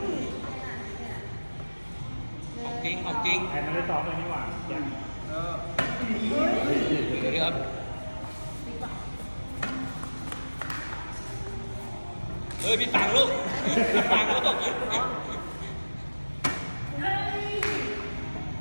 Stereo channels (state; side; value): inverted; both; correlation -1.00